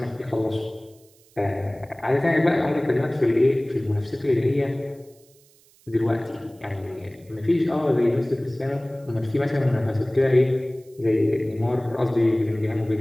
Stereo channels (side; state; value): right; noise; hiss, 30 dB below the sound